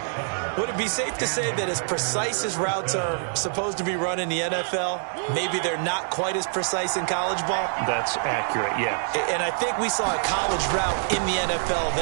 Would it be safe to say that as precise as routes are supposed to be run in the NFL, maybe they're not quite as precise in college ball? That's accurate, yeah. And I think we saw a college route in the NFL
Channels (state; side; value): silent; left; digital silence